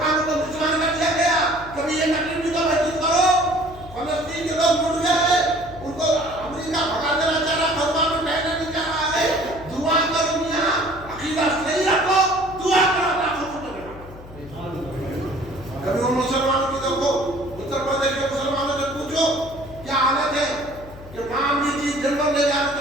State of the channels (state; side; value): noise; left; hum, 17 dB below the sound